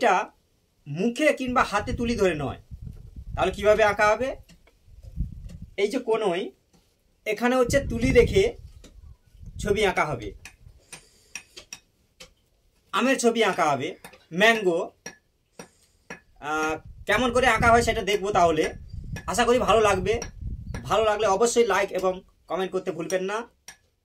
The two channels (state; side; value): identical; both; correlation 1.00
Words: মুখে কিংবা হাতে তুলি ধরে নয়। তাহলে কিভাবে আঁকা হবে? এই যে কোনোই এখানে হচ্ছে তুলি রেখে ছবি আঁকা হবে। আমের ছবি আঁকা হবে, ম্যাঙ্গো। কেমন করে আঁকা হয় সেটা দেখবো। তাহলে আশা করি ভালো লাগবে। ভালো লাগলে অবশ্যই লাইক এবং কমেন্ট করতে ভুলবেন না।